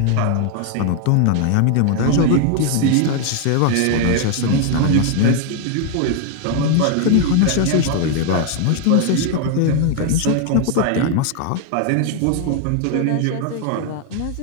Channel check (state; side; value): different; both; correlation 0.00